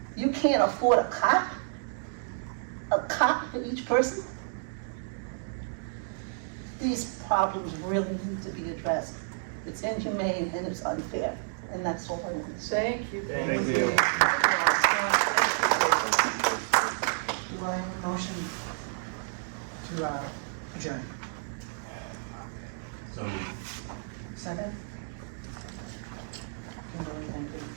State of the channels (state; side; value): silent; left; digital silence